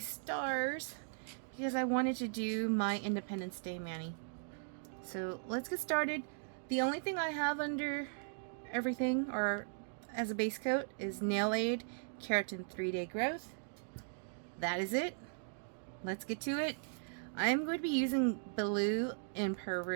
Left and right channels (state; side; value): silent; left; digital silence